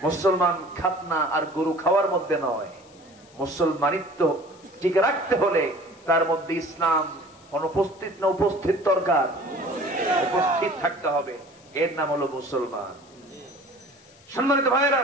মুসলমান খাতনা আর গরু খাওয়ার মধ্যে নয়, মুসলমানিত্ব টিকে রাখতে হলে তার মধ্যে ইসলাম অনুপস্থিত না উপস্থিত দরকার, উপস্থিত থাকতে হবে। এর নাম হলো মুসলমান। সম্মানিত ভাইয়েরা,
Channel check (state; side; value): noise; left; hiss, 27 dB below the sound